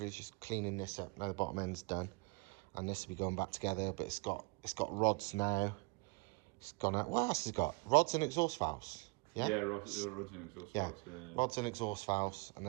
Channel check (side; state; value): left; quieter; 28.1 dB